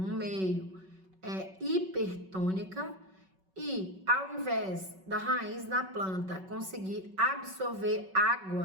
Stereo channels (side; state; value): left; late; 5.3 ms